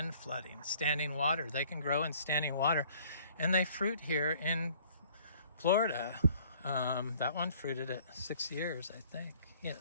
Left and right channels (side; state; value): both; inverted; correlation -0.57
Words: flooding, standing water. They can grow in standing water, and they fruit here in Florida. That one fruited at 6 years, I think.